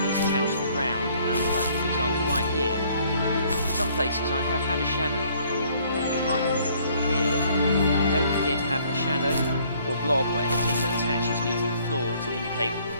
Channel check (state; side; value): inverted; both; correlation -0.61